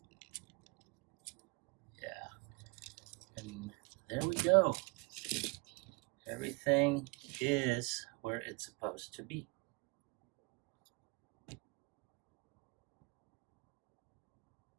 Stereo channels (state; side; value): quieter; left; 28.8 dB